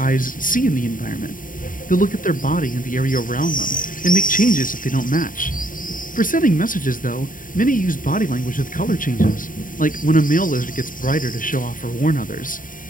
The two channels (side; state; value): right; late; 0.39 ms